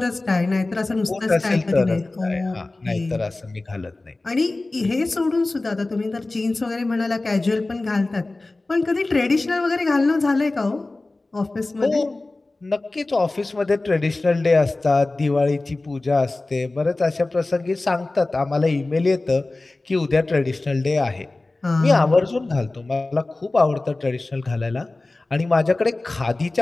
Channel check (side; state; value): right; quieter; 3.1 dB